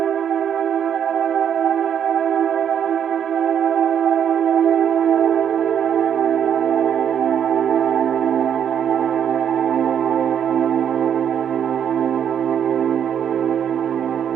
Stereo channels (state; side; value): quieter; left; 8.7 dB